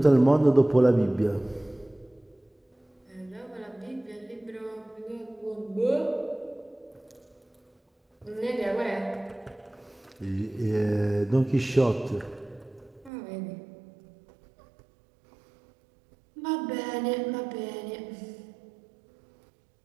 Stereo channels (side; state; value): left; drops out; at 13.1 s